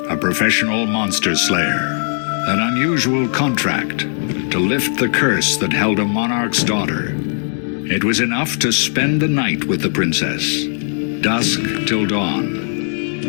a professional monster slayer. An unusual contract to lift the curse that held a monarch's daughter. It was enough to spend the night with the princess, dusk till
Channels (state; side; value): silent; right; 67 dB below the other